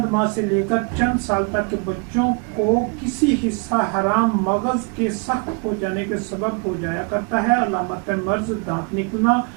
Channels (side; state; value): left; quieter; 34.2 dB